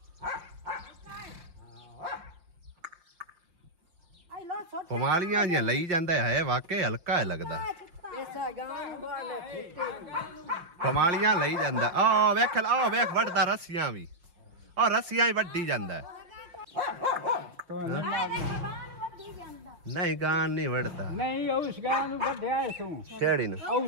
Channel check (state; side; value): late; left; 5.8 ms